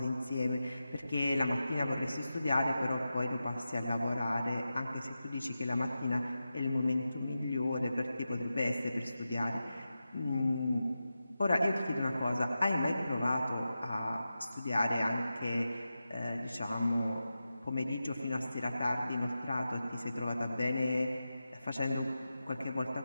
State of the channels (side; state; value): both; inverted; correlation -0.92